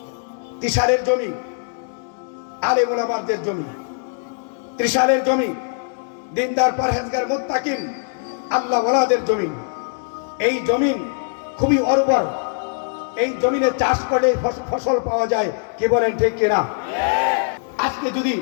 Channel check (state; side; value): silent; right; digital silence